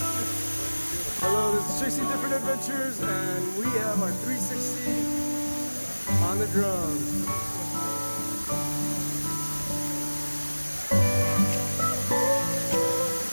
Chasing Different Adventures, and we have our 360 on the drums.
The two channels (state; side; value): inverted; both; correlation -1.00